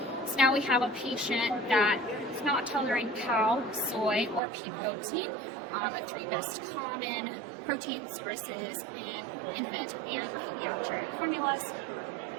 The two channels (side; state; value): left; drops out; at 4.4 s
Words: So now we have a patient that is not tolerating cow, soy, or pea protein, the three most common protein sources in infant and pediatric formulas.